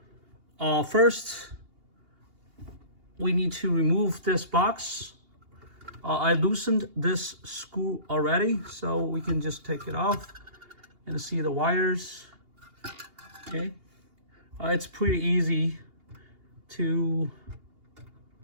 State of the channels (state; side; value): late; left; 2.8 ms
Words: First, we need to remove this box. I loosened this screw already, so we can just take it off and see the wires. Okay, it's pretty easy to